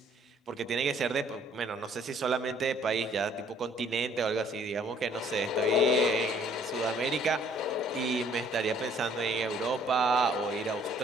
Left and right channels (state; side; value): normal; both; correlation 0.60